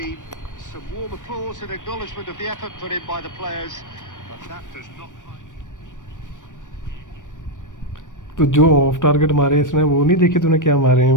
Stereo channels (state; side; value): late; right; 0.87 ms